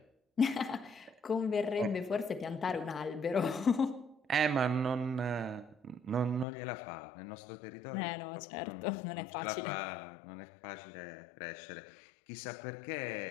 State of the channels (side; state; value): right; drops out; at 6.5 s